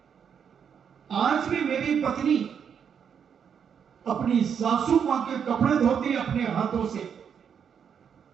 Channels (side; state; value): left; quieter; 7.5 dB